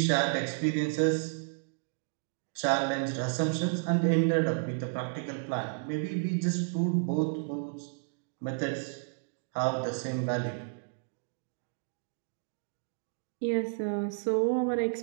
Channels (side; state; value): left; silent; digital silence